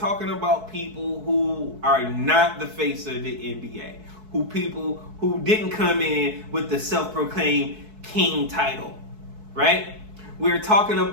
about people who are not the face of the NBA. People who didn't come in with the self-proclaimed king title, right? We're talking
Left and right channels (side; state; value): left; late; 4.6 ms